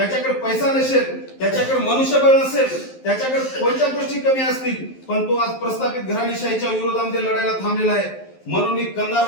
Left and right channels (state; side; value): late; right; 11 ms